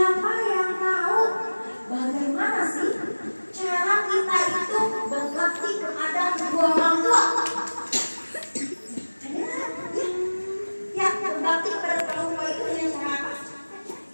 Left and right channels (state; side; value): inverted; both; correlation -1.00